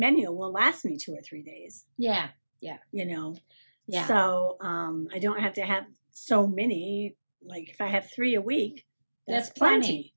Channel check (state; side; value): inverted; both; correlation -1.00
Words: will last me 2 or 3 days. Yeah. Yeah. Yeah. So I don't have to have so many. Like if I have 3 a week, that's plenty.